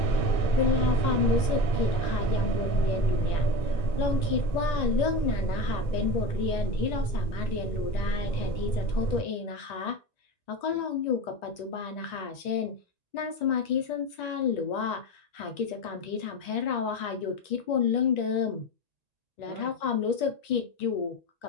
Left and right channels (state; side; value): late; right; 1.9 ms